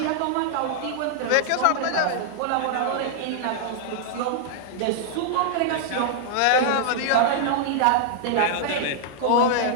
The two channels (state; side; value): different; both; correlation -0.01